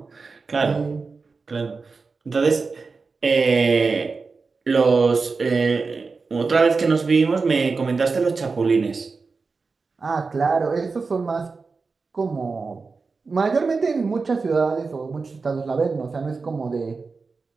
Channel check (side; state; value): left; quieter; 4.4 dB